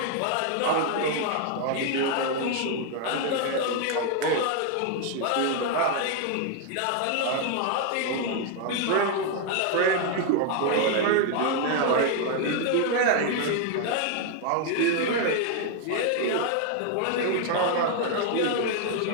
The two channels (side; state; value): both; different; correlation 0.00